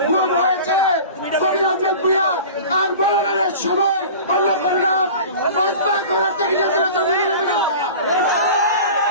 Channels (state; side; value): inverted; both; correlation -0.38